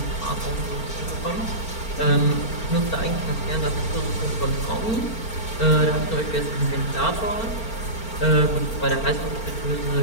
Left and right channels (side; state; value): right; late; 4.4 ms